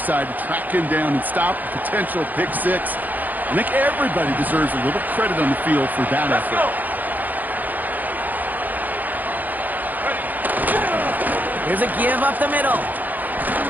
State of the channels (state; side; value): late; left; 0.083 ms